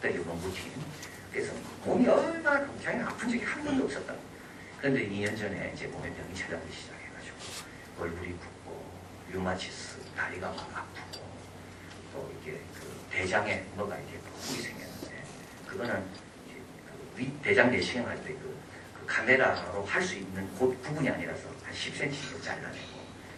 노무팀. 그래서 몸이 얼마나 굉장히 아픈 적이 한 번도 없었다. 그런데 2년 전에 이제 몸에 병이 찾아오기 시작해가지고 얼굴이 붓고 류마티스, 다리가 막 아프고 또 이게 그 대장에 뭐가 이렇게 뿔이 생겼는데 그거는 대장 내시경 할 때 그 카메라로 할 수 있는 그 부분이 아니라서 한 10cm 잘라내고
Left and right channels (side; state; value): both; identical; correlation 1.00